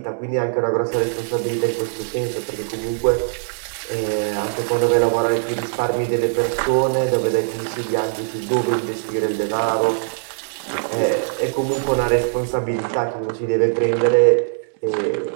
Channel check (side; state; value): left; silent; digital silence